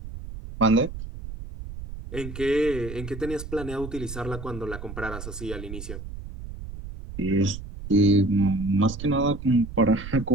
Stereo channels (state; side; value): noise; right; rumble, 10 dB below the sound